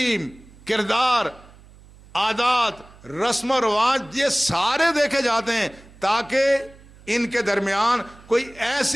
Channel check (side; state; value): right; noise; hum, 23 dB below the sound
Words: کردار، عادات، رسم و رواج، یہ سارے دیکھے جاتے ہیں تاکہ ان کے درمیان کوئی